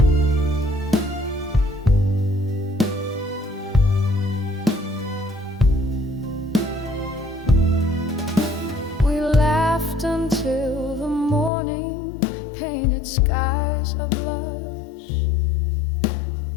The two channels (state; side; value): drops out; right; at 11.5 s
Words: Until the morning painted skies of blush,